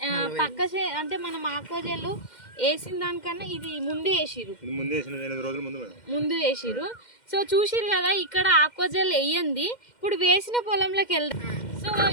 అంటే మనం ఆక్వాజెల్ వేసిన దానికన్నా ఇది ముందు వేసిరు. సో చూసిరు కదా, ఇక్కడ ఆక్వాజెల్ వేయండి. ఇప్పుడు వేసిన పొలంలోకి వెళ్దాం. సో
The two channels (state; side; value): late; right; 2.1 ms